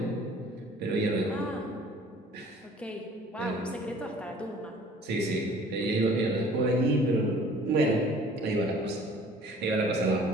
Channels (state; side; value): normal; both; correlation 0.51